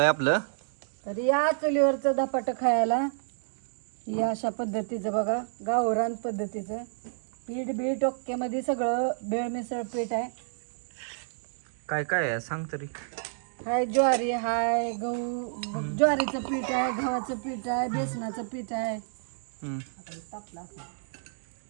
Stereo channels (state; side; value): silent; left; digital silence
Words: आहे आपलं. तर या चुलीवरचं धपाटं खायला ही अशा पद्धतीचं बघा, गावरान पद्धतीचं पीठ बीठ ओक्केमध्ये सगळं बेळ मिसळ पीठ आहे. काय काय आहे सांग तरी. हाय ज्वारी, हाय गहू, ज्वारीचं पीठ आहे, गव्हाचं पीठ आहे, बेसनाचं पीठ आहे. हम्म.